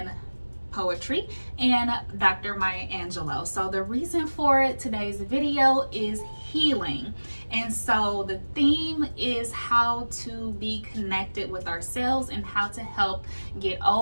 poetry and Dr. Maya Angelou. So the reason for today's video is healing. And so the theme is how to be connected with ourselves and how to help get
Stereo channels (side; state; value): both; inverted; correlation -1.00